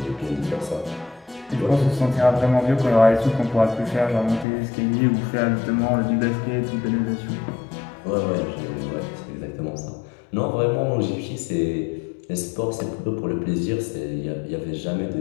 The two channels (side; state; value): right; drops out; at 4.5 s